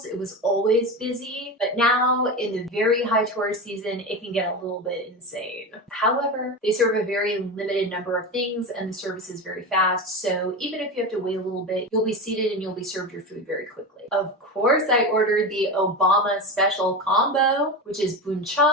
It was always busy, but now in the very high tourist season, it can get a little bit insane. However, they serve a very limited number of things and the service is very fast. So even if you have to wait a little bit, you'll be seated and you'll be served your food very quickly. Of course, I ordered the Obama special combo, which is bún chả,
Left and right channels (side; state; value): both; normal; correlation 0.22